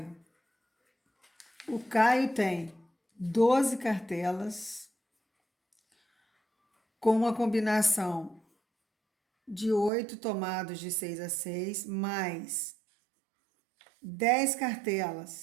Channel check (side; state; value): left; drops out; at 9.9 s